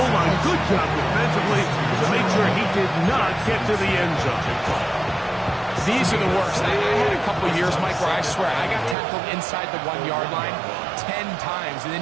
line. Good job defensively to make sure he did not get to the end zone. These are the worst. I had a couple years, Mike, where I swear I got tackled inside the 1-yard line 10 times. And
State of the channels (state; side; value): drops out; left; at 9.0 s